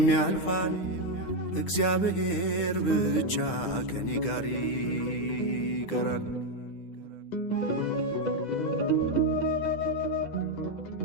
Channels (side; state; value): right; late; 10 ms